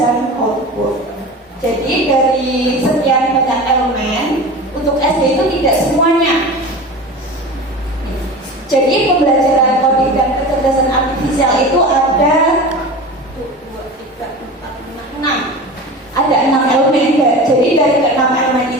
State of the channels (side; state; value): both; normal; correlation 0.32